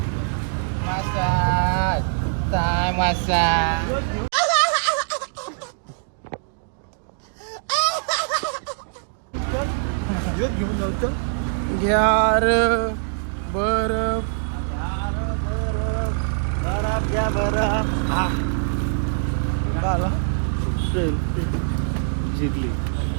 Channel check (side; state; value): left; silent; digital silence